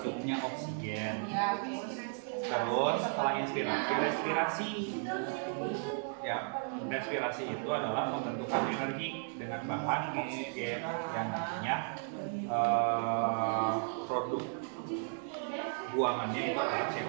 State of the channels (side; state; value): left; silent; 55 dB below the other